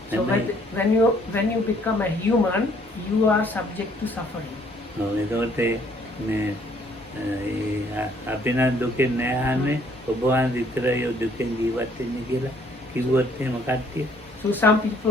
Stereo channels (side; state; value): both; normal; correlation 0.63